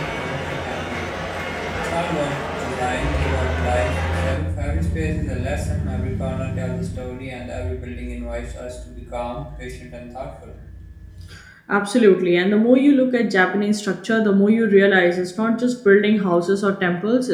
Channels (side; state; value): both; identical; correlation 1.00